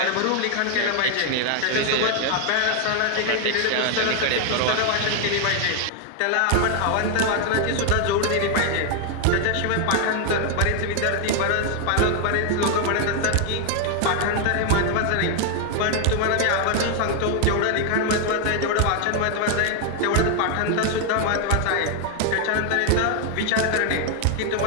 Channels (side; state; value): both; different; correlation 0.00